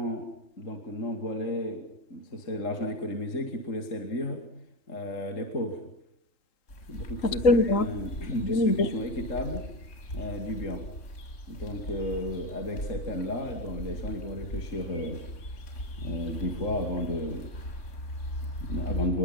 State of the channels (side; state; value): right; late; 3.7 ms